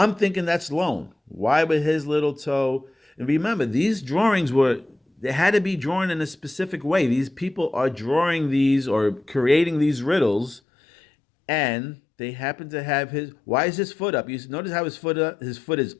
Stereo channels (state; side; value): drops out; right; at 10.6 s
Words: thinking that's loan. Why would his little toe? And remember, these drawings they had to be drawn in a specific way. These people are drawing these or creating these riddles, and they happen to have why is his foot up? You notice how his foot is